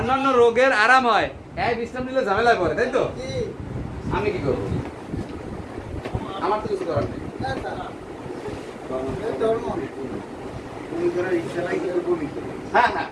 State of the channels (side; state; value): both; identical; correlation 1.00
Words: রোগের আরাম হয়। এই বিশ্রাম নিলে ঝামেলায় পড়ে, তাই তো? আমি কি করবো? আমার তো কিছু করার নেই। হ্যাঁ,